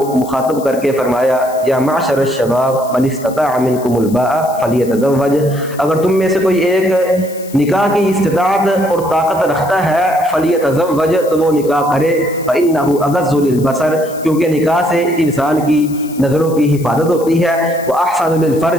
मुखातब करके फरमाया या माशर शबाब मन इस्तताअ मिनकुमुल बाअ फलियतज़व्वज, अगर तुम में से कोई एक निकाह की इस्तिताअत और ताकत रखता है फलियतज़व्वज, तो वो निकाह करे, फ़इन्नहु अग़ज़्ज़ु लिलबसर, क्योंकि निकाह से इंसान की नज़रों की हिफाजत होती है, व अहसनु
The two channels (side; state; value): left; noise; hiss, 18 dB below the sound